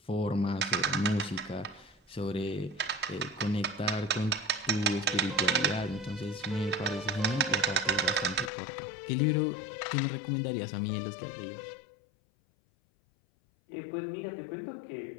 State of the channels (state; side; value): drops out; right; at 8.5 s